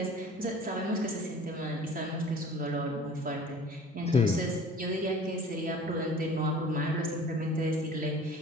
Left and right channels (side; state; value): both; normal; correlation 0.45